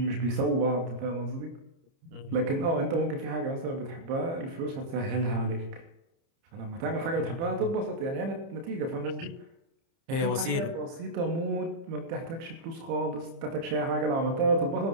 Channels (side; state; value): left; late; 30 ms